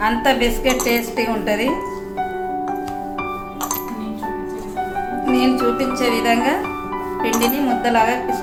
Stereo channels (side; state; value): both; identical; correlation 1.00